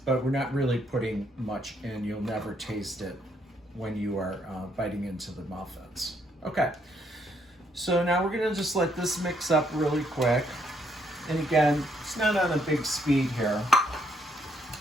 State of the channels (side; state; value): both; normal; correlation 0.72